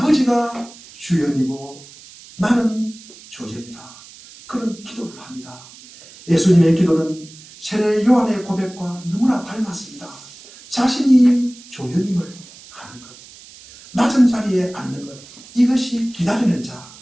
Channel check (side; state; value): right; noise; hiss, 20 dB below the sound